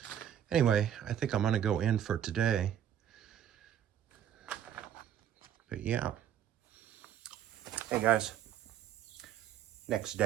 anyway, I think I'm gonna go in for today. But yeah. Hey guys, next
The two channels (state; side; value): quieter; left; 10.0 dB